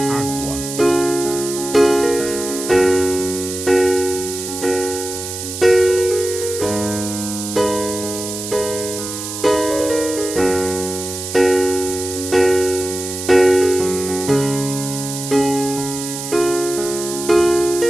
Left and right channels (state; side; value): noise; right; hiss, 7 dB below the sound